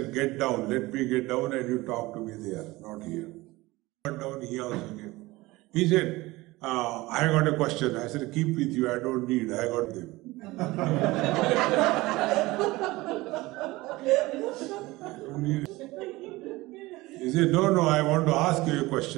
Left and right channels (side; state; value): left; quieter; 20.3 dB